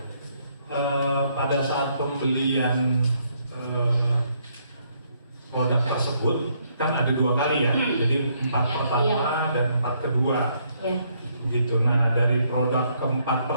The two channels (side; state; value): both; inverted; correlation -0.71